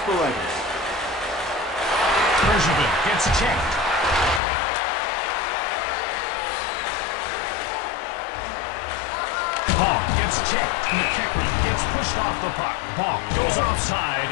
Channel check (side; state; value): right; drops out; at 4.4 s